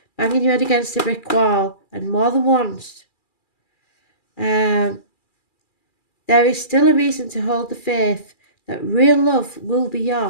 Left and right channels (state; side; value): late; right; 2.4 ms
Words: banging your head against a brick wall, and more than once, there is still a reason to hold the faith that real love will be